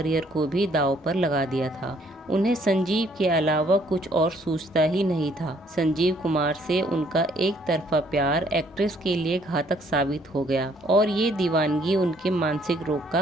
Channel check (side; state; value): both; normal; correlation 0.64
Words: को भी दांव पर लगा दिया था। उन्हें संजीव के अलावा कुछ और सूझता ही नहीं था। संजीव कुमार से उनका एक तरफा प्यार एक्ट्रेस के लिए घातक साबित हो गया और ये दीवानगी उनके मानसिक रोग का